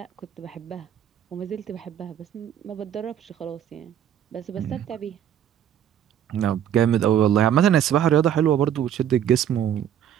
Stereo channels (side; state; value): left; quieter; 9.8 dB